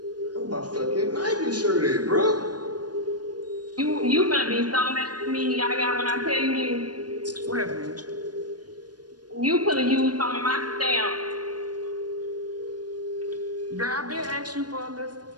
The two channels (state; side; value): late; left; 0.69 ms